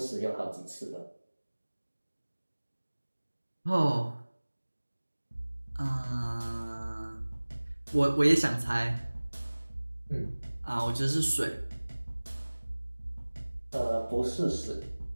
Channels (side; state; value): both; inverted; correlation -1.00